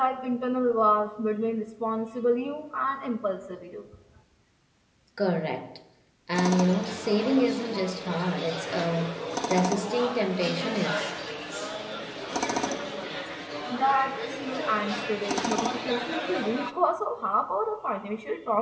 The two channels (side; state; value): both; identical; correlation 1.00